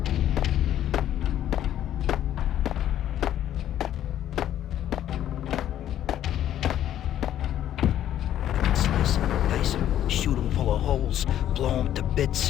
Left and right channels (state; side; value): quieter; right; 11.4 dB